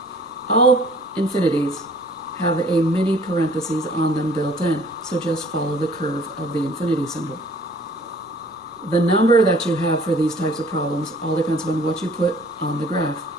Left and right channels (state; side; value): normal; both; correlation 0.54